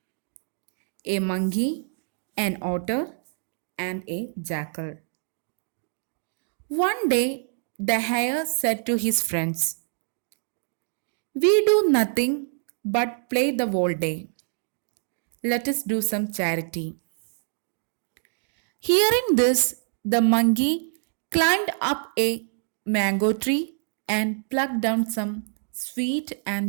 a monkey, an otter, and a jackal. One day, the hare said to his friends, "We do nothing but play the whole day. Let us do some charity." Hearing this, the monkey climbed up a mango tree and plucked down some sweet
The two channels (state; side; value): silent; left; digital silence